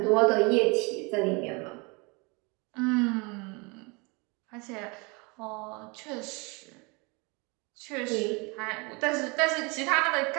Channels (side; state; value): left; quieter; 28.7 dB